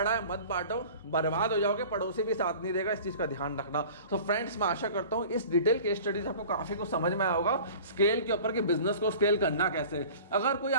है मत बांटो, बर्बाद हो जाओगे, पड़ोसी भी साथ नहीं देगा, इस चीज का ध्यान रखना। तो फ्रेंड्स, मैं आशा करता हूँ इस डिटेल केस स्टडीज आपको काफी कुछ समझ में आया होगा स्केल के ऊपर कि बिजनेस को स्केल करना कैसे। अगर कोई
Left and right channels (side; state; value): both; inverted; correlation -0.43